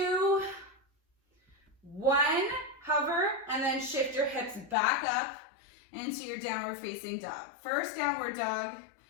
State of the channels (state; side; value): drops out; right; at 4.8 s